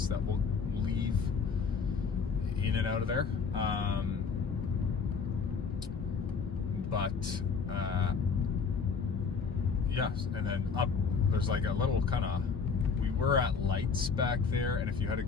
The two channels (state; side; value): quieter; right; 5.5 dB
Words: that will leave in and out of there. Yes, and then up there's like a little kind of, we were at lights back there, and if you had